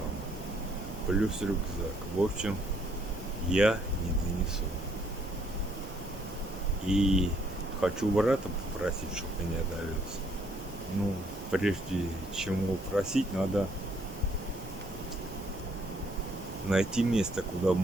Плюс рюкзак. В общем, я не донесу. И хочу брата попросить, чтобы меня довез. Ну, прежде чем его просить, надо найти место, куда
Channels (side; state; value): both; normal; correlation 0.68